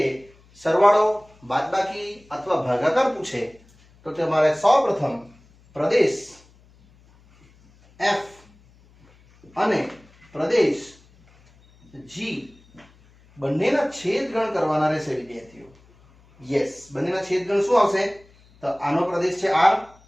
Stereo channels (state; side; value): noise; left; hum, 29 dB below the sound